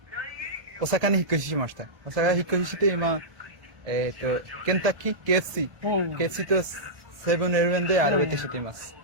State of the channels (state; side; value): late; left; 1.7 ms